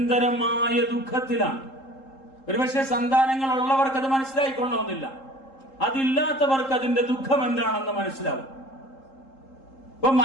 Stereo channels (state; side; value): late; right; 3.8 ms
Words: ദുഃഖത്തിലാണ്. ഒരുപക്ഷെ സന്താനങ്ങൾ ഉള്ളവർക്ക് അത് മനസ്സിലായിക്കൊള്ളണമെന്നില്ല, അതില്ലാത്തവർക്ക് അതിന്റെ ദുഃഖം എന്താണെന്ന് മനസ്സിലാവും. ഇപ്പൊ